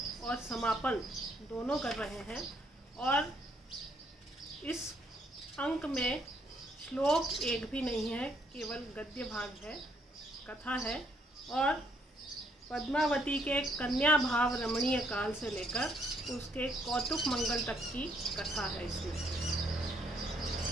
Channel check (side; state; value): both; normal; correlation 0.69